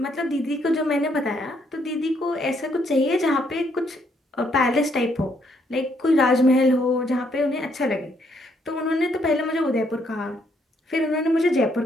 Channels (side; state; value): both; normal; correlation 0.71